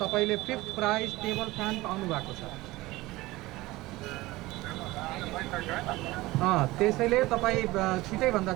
फिफ्थ प्राइज टेबल फ्यान पाउनु भएको छ। त्यसैले तपाईँ छिटैभन्दा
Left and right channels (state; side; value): quieter; left; 19.3 dB